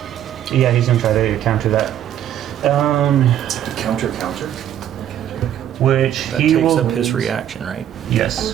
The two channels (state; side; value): quieter; left; 10.8 dB